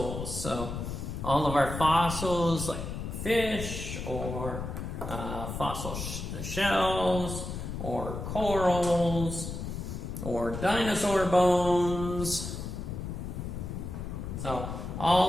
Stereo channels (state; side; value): noise; left; rumble, 6 dB below the sound